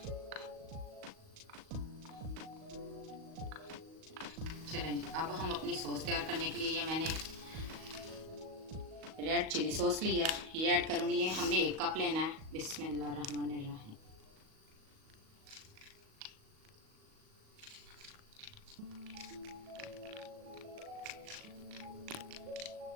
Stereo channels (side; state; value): left; late; 38 ms